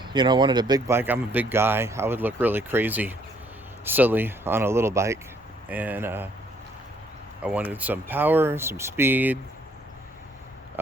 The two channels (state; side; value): normal; both; correlation 0.65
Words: wanted a big bike. I'm a big guy. I would look really crazy, silly on a little bike, and I wanted some power, some speed.